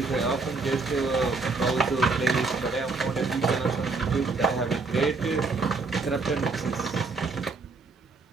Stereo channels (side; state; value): left; quieter; 4.0 dB